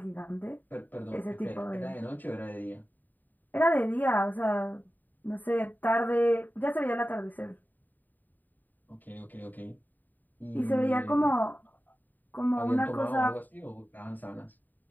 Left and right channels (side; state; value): right; late; 0.087 ms